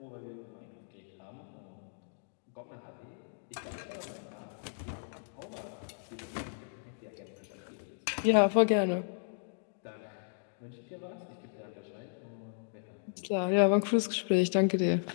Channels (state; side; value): silent; right; digital silence